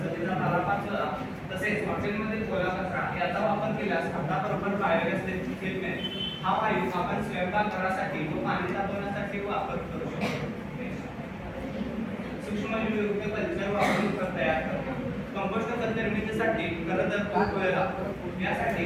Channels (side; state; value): both; identical; correlation 1.00